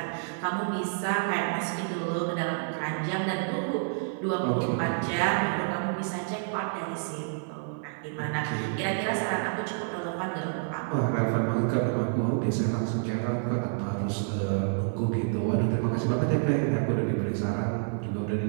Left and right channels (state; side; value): silent; left; 59 dB below the other